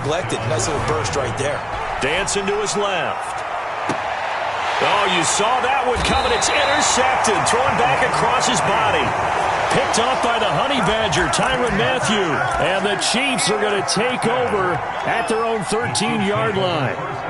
Nice little burst right there. Dancing to his left. Oh, you saw that one coming. It's intercepted. Thrown back across his body. Picked off by the Honey Badger, Tyrann Mathieu. And the Chiefs are going to take over at their own 13-yard line.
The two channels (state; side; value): identical; both; correlation 1.00